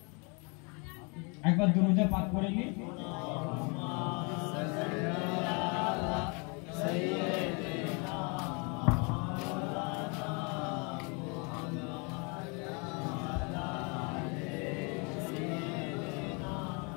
একবার দুরূদে পাক করে নি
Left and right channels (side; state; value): right; quieter; 32.8 dB